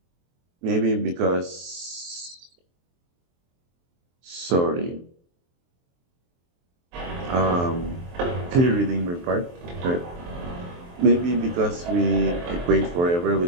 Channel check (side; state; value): left; late; 23 ms